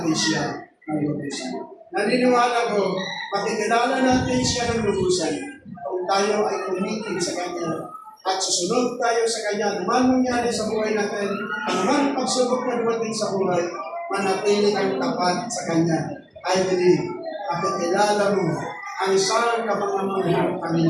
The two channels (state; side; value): identical; both; correlation 1.00